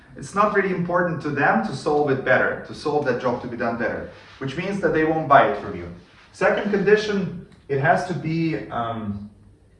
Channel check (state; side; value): identical; both; correlation 1.00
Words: It's not really important to them to solve it better, to solve that job to be done better, which means that they won't buy it from you. Second condition, it has to be,